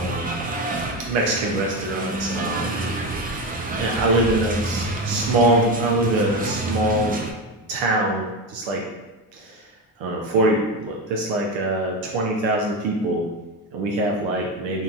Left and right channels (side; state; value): both; normal; correlation 0.17